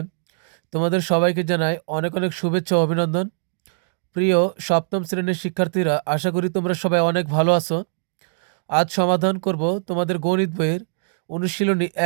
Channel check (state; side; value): silent; left; digital silence